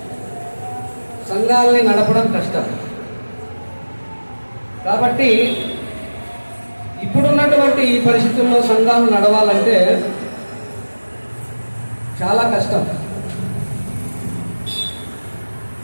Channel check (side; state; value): both; inverted; correlation -1.00